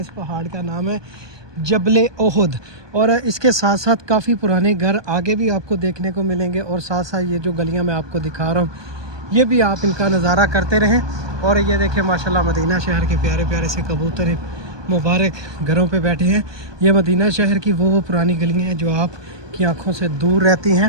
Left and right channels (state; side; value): late; left; 1.2 ms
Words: इस पहाड़ का नाम है जबले ओहद और इसके साथ साथ काफ़ी पुराने घर आगे भी आपको देखने को मिलेंगे और साथ साथ ये जो गलियां मैं आपको दिखा रहा हूँ ये भी आप इनका नज़ारा करते रहें। और ये देखिए माशाल्लाह मदीना शहर के प्यारे प्यारे से कबूतर मुबारक घरों पे बैठे हैं। ये मदीना शहर की वो पुरानी गलियां हैं जो आपकी आंखों से दूर रहती